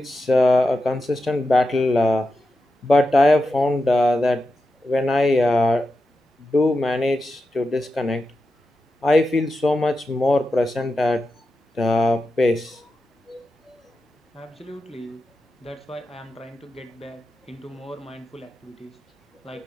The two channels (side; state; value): both; normal; correlation 0.90